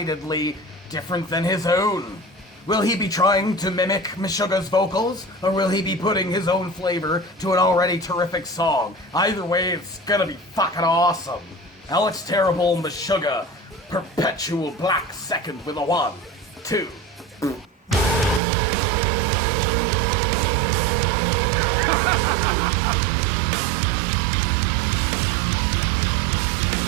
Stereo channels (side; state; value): left; drops out; at 18.4 s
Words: different than his own. Will he be trying to mimic Meshuggah's vocals, or will he be putting his own flavor to an already terrific song? Either way, it's gonna be fucking awesome. Alex Terrible, Meshuggah, Perpetual Black Second with a 1, 2.